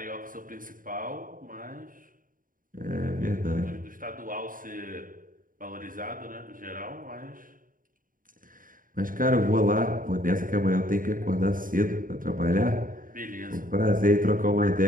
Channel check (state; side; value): late; left; 0.40 ms